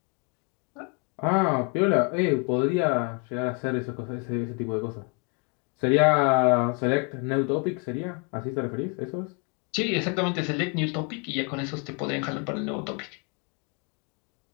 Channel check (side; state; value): right; quieter; 34.4 dB